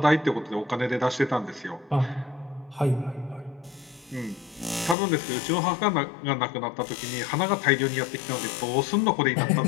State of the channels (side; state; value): right; drops out; at 5.0 s